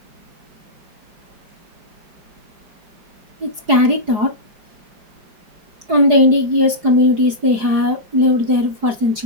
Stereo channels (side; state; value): left; late; 4.8 ms